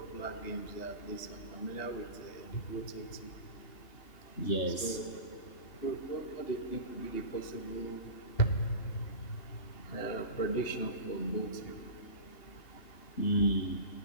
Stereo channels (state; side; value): late; right; 3.2 ms